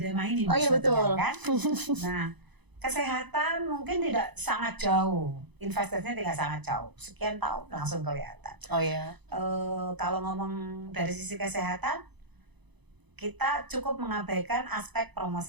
tema ini. Oh iya betul. Kan? Nah, kesehatan mungkin tidak sangat jauh, investasinya tidak sangat jauh. Sekian tahun langsung kelihatan. Oh iya. Kalau ngomong dari sisi kesehatan, kita cukup mengabaikan aspek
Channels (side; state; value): left; late; 0.99 ms